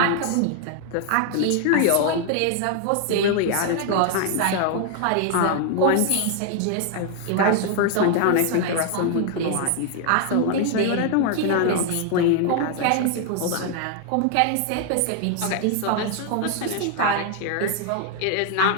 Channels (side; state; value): both; different; correlation 0.00